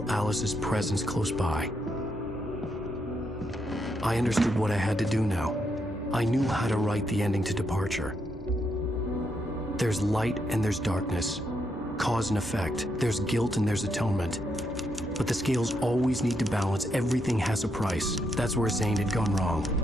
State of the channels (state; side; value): normal; both; correlation 0.79